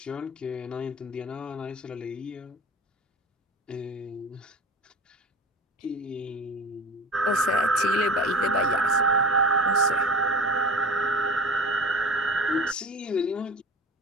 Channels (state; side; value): normal; both; correlation 0.38